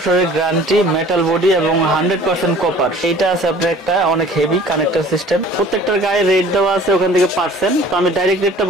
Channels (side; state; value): both; normal; correlation 0.49